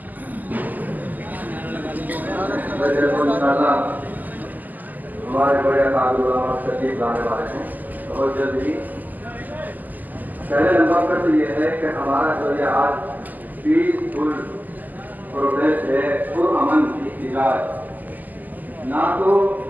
ہمارے بڑے علامہ تشریف لانے والے ہیں بہت جلد ہی۔ پہلے نمبر پر تو یہ ہے کہ ہمارا جو یہ آج پیسفل پروٹیسٹ ہے، پرامن احتجاج، نہ تو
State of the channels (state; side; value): late; left; 0.083 ms